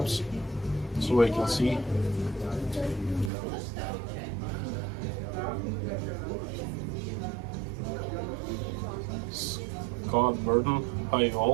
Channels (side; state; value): left; drops out; at 3.3 s